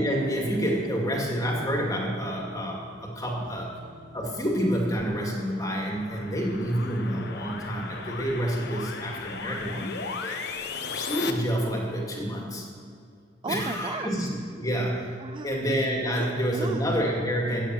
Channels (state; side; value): normal; both; correlation 0.62